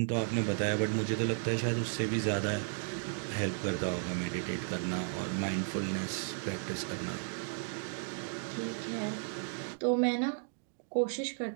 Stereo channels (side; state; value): left; silent; 55 dB below the other